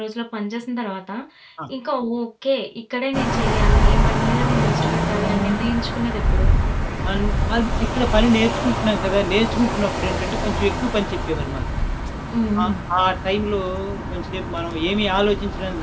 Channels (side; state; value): both; identical; correlation 1.00